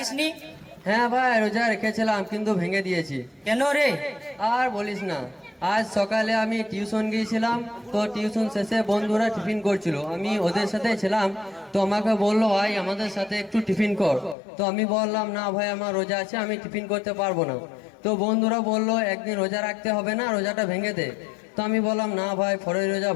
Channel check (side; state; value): right; drops out; at 14.4 s